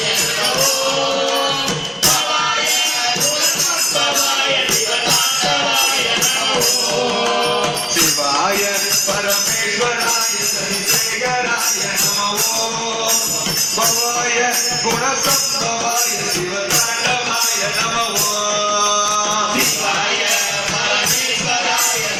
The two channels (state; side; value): identical; both; correlation 1.00